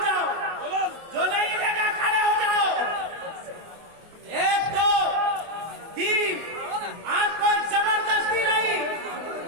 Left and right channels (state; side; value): late; left; 24 ms